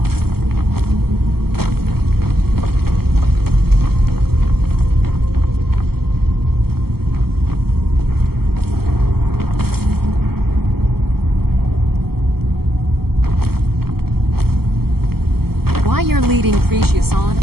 Why you're leading Cretius on,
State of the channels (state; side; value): late; left; 0.95 ms